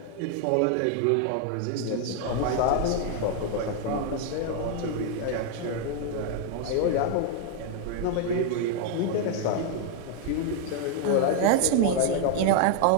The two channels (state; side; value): different; both; correlation 0.00